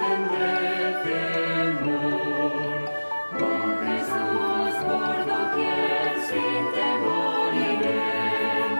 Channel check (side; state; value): both; inverted; correlation -1.00